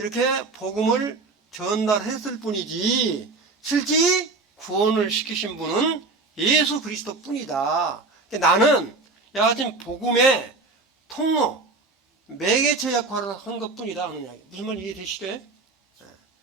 복음을 전달했을 뿐이지 실제 구원을 시키신 분은 예수 그리스도 뿐이다. 나는 여하튼 복음의 통로, 매개체 역할을 한 것 뿐이다 하는 이야기. 무슨 말 이해되시죠?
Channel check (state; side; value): quieter; left; 3.7 dB